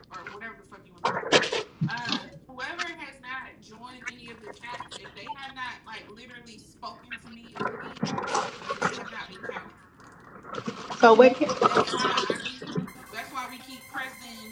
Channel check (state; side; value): identical; both; correlation 1.00